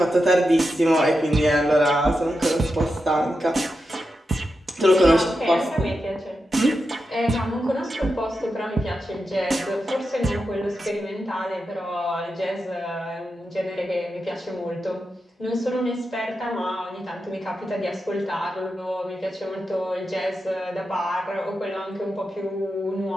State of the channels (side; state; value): both; normal; correlation 0.88